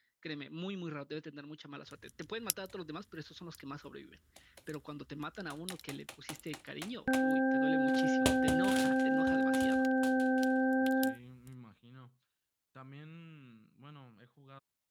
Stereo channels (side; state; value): both; identical; correlation 1.00